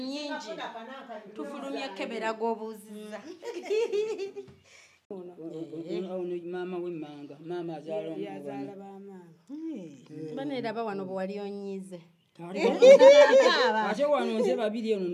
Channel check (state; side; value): identical; both; correlation 1.00